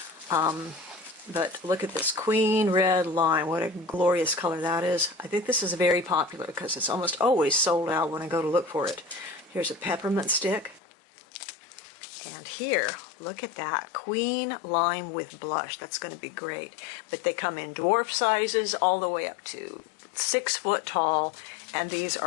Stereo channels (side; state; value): right; drops out; at 10.8 s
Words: But look at this Queen Red Lime. What a glorious color that is. I think this is very popular because it's almost always sold out when I go to look for it. Here's a peppermint stick. And here, look at that. Queen Lime with blush. That's going to be great. But they come in dwarf sizes all the way up to 6 foot tall. And these